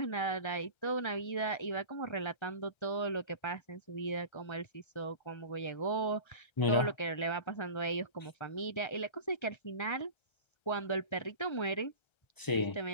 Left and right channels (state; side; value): late; right; 1.3 ms